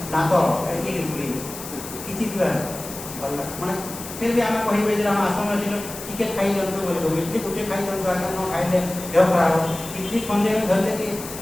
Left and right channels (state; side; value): noise; left; hiss, 11 dB below the sound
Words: ଦାନ୍ତ କିଛି ଭଲ ମାନେ ଫିର୍ ବି ଆମେ କହିବେ ଯେ ଆମ ଆଶ୍ରମରେ ଥିଲୁ ଟିକେ ଖାଇ ଦିଅନ୍ତୁ ବୋଲି କହିବୁ, ଇଡଲି ଗୋଟେ ଖାଇ ଦିଅନ୍ତୁ, ଆଜ୍ଞା ନ ଖାଇଲେ ଦେହ ଖରାପ ହେବ। ଇଡଲି ଖଣ୍ଡେ ଧରିଲେ କି